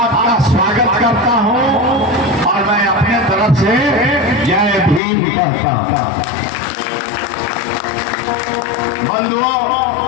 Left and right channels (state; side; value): drops out; right; at 5.0 s